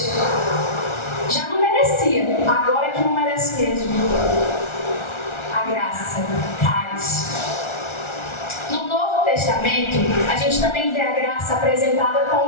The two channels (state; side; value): late; right; 1.4 ms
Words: Já não merecia, agora é que não merece mesmo. A graça, charis. No Novo Testamento, a gente também vê a graça apresentada